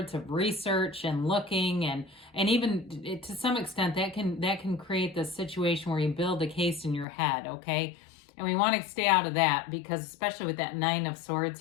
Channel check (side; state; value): right; drops out; at 7.1 s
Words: of research and looking, and even to some extent that can create this situation where you build a case in your head, okay? And we want to stay out of that, because especially with that Nine of Swords